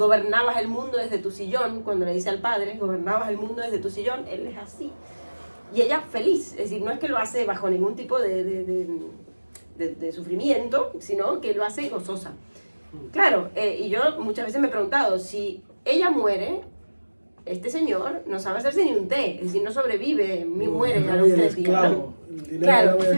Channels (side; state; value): both; inverted; correlation -1.00